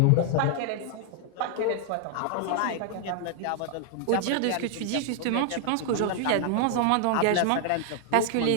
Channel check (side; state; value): both; different; correlation 0.00